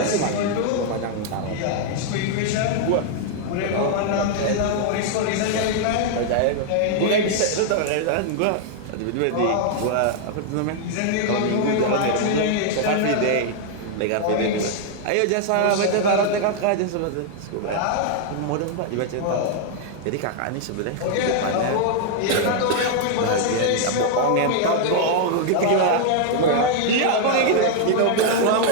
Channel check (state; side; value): different; both; correlation 0.00